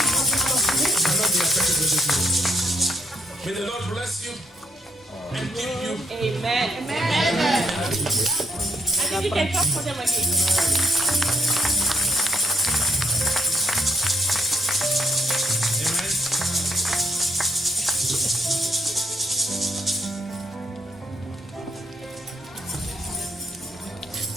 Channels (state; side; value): normal; both; correlation 0.74